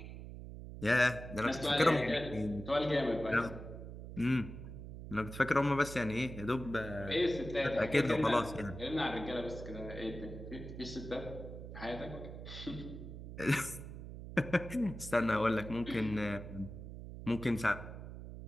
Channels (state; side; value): noise; right; hum, 11 dB below the sound